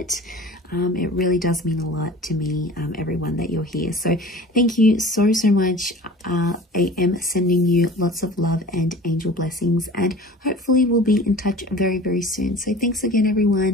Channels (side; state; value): both; normal; correlation 0.42